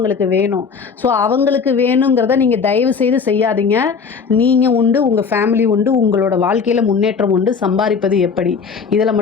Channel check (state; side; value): quieter; right; 5.6 dB